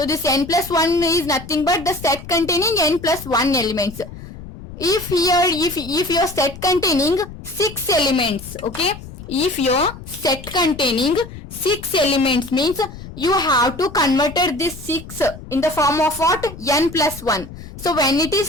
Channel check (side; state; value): left; noise; rumble, 14 dB below the sound